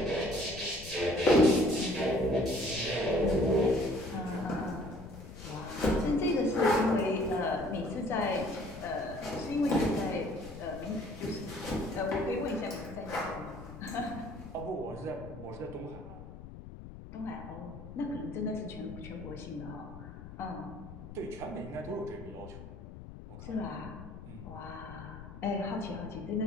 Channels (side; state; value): left; noise; rumble, 13 dB below the sound